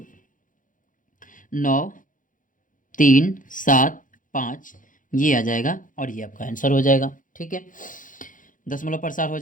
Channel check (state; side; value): late; right; 0.38 ms